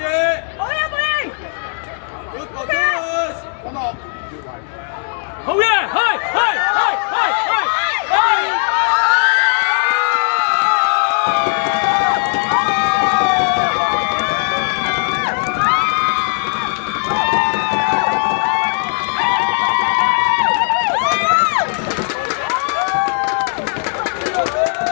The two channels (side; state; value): right; silent; 59 dB below the other